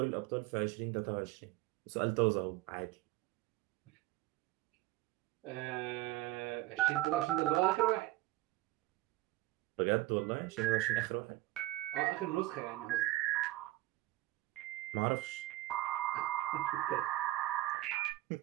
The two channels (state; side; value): quieter; left; 17.6 dB